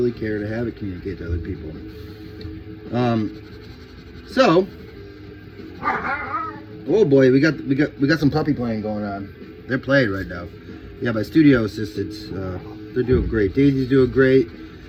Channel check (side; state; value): both; identical; correlation 1.00